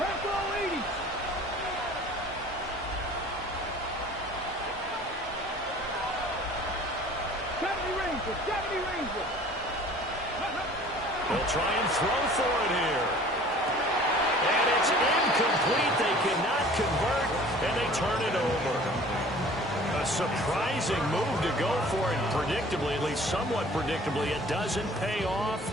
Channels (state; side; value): normal; both; correlation 0.48